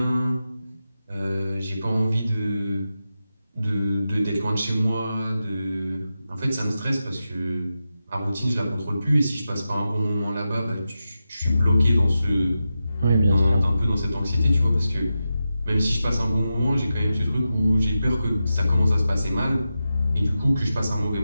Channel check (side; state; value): both; inverted; correlation -0.91